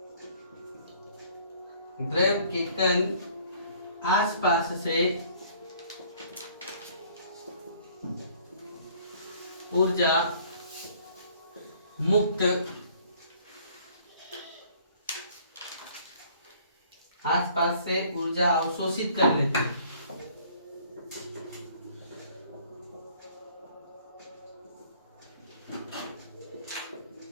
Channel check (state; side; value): inverted; both; correlation -0.57